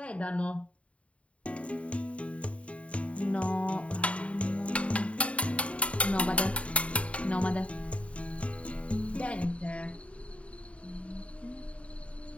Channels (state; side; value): late; right; 0.064 ms